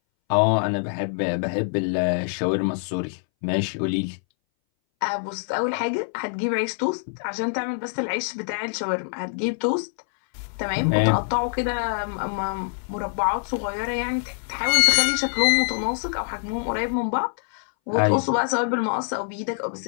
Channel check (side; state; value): right; silent; 61 dB below the other